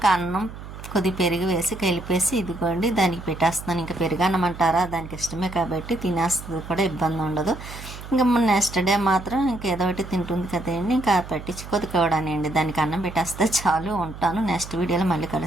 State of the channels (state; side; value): noise; right; hum, 13 dB below the sound